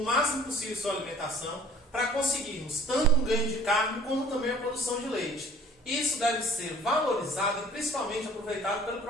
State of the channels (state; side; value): normal; both; correlation 0.51